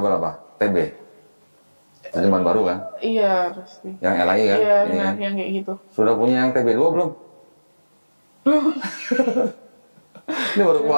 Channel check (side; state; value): both; inverted; correlation -1.00